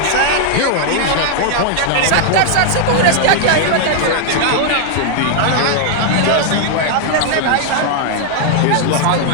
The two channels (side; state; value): both; different; correlation 0.00